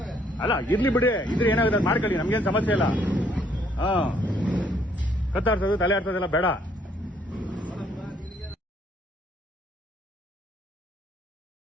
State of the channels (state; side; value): normal; both; correlation 0.66